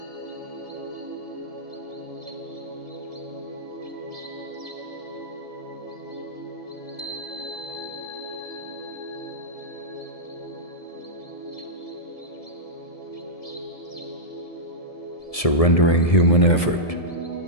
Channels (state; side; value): late; right; 1.7 ms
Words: Surrendering human effort.